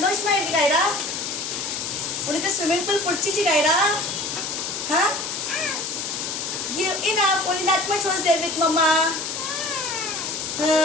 இருக்கு கைரா? உனக்கு swimming pool பிடிச்சிச்சு Khaira? Huh? You enough, only that much was there with mama.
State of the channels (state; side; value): noise; left; hiss, 4 dB below the sound